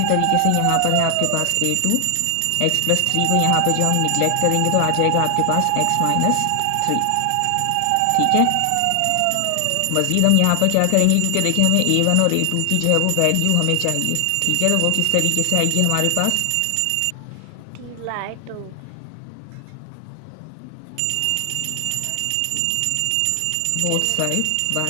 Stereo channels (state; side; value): different; both; correlation 0.00